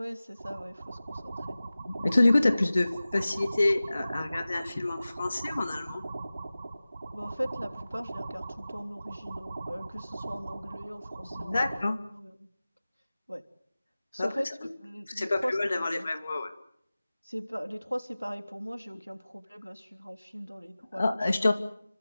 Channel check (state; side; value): inverted; both; correlation -0.97